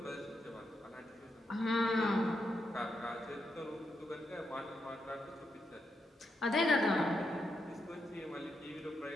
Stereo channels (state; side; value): normal; both; correlation 0.83